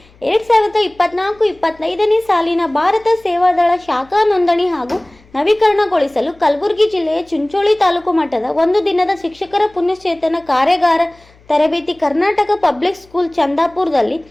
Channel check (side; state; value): left; noise; hum, 29 dB below the sound